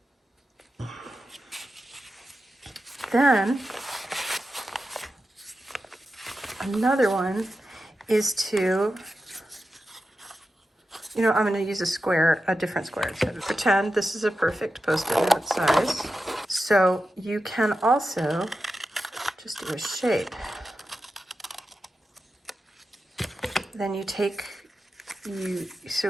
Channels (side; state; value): both; normal; correlation 0.91